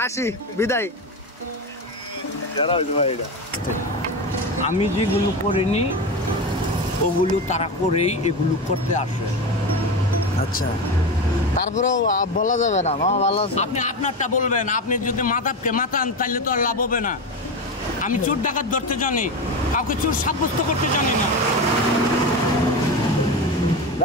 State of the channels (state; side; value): normal; both; correlation 0.20